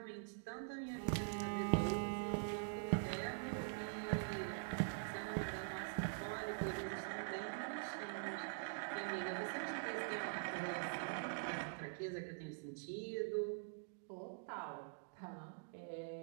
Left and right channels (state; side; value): silent; left; digital silence